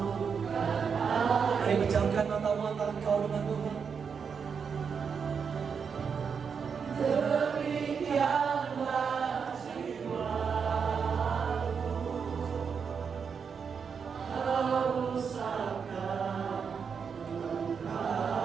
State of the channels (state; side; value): quieter; left; 6.3 dB